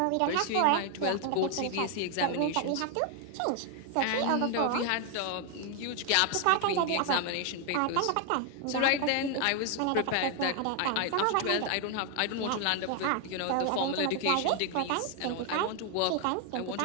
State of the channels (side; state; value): both; different; correlation 0.00